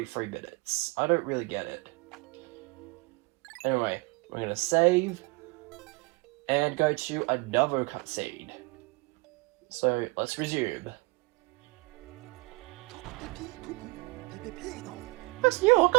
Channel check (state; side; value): quieter; left; 26.4 dB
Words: minutes? I don't really get it. Anyway, we're gonna save and go to another cutscene. So let's resume. This new